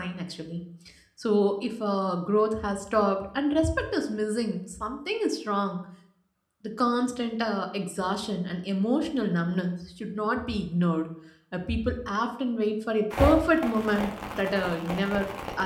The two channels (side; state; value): both; identical; correlation 1.00